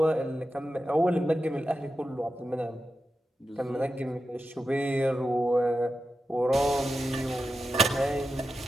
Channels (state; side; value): normal; both; correlation 0.90